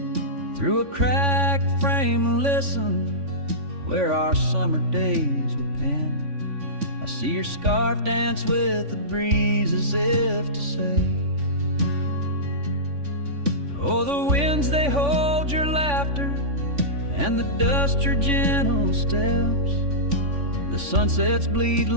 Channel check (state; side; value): late; left; 3.5 ms